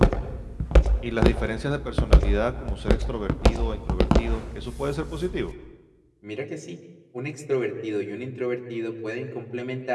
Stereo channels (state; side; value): identical; both; correlation 1.00